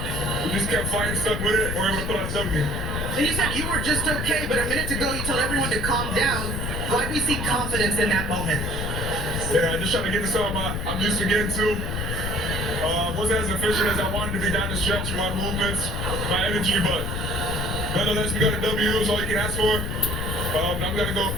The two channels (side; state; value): left; noise; rumble, 3 dB below the sound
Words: We just kept fighting, stuck with it, and we're able to pull out something. And you said you were just okay, but a minute ago you told everyone to calm down. Why do we see confidence in that moment? Yeah, just trying to get to something I'm used to getting to. Wasn't as efficient as I wanted to be down the stretch with my movements, my energy, but nonetheless, we got a W. Is all you can ask for. I'm going to go